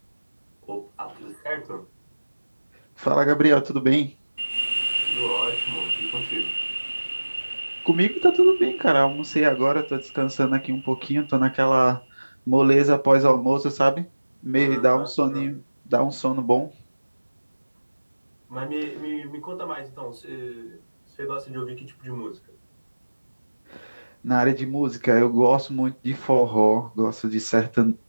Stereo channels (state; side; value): inverted; both; correlation -1.00